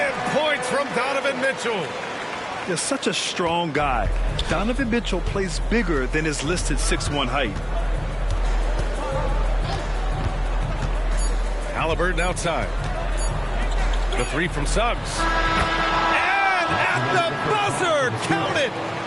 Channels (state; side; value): identical; both; correlation 1.00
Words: points from Donovan Mitchell. You're such a strong guy. Donovan Mitchell plays bigger than his listed 6'1" height. Halliburton outside. The 3 from Suggs. And at the buzzer, count it.